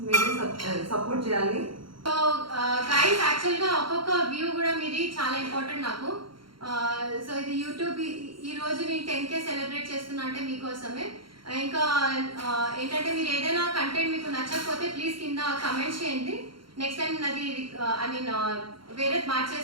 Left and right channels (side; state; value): left; late; 0.73 ms